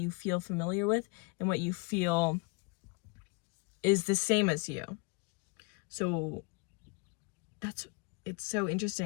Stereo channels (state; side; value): quieter; right; 30.3 dB